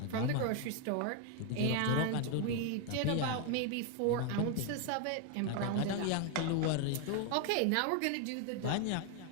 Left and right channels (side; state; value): both; different; correlation 0.01